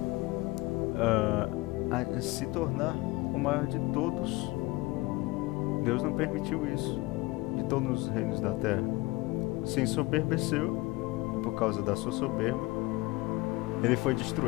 se tornar o maior de todos. Deus não permitiu isso, de todos os reinos da terra. Se ensoberbeceu, por causa da sua soberba, ele foi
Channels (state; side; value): quieter; right; 21.7 dB